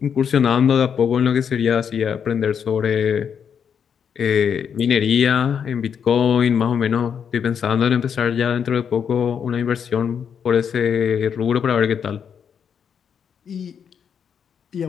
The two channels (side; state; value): right; quieter; 7.5 dB